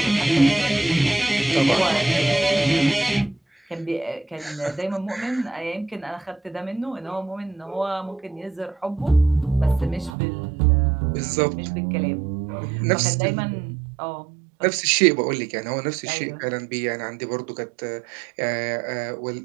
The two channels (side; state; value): left; drops out; at 10.1 s